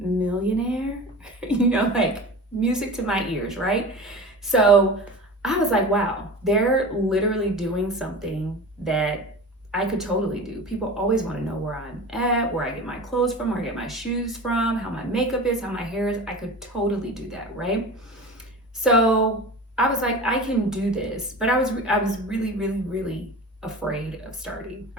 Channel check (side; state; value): both; normal; correlation 0.33